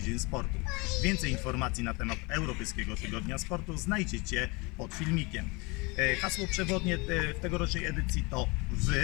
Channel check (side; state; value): right; quieter; 27.1 dB